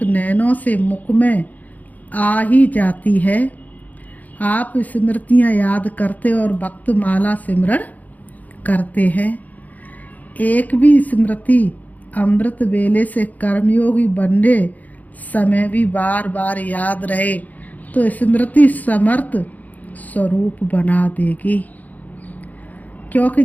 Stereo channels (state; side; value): late; right; 0.079 ms